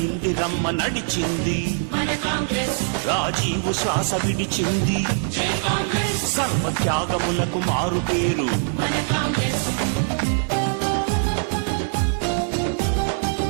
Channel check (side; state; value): left; silent; digital silence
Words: ఇందిరమ్మ నడిచింది, రాజీవు శ్వాస విడిచింది, సర్వత్యాగములకు మారు పేరు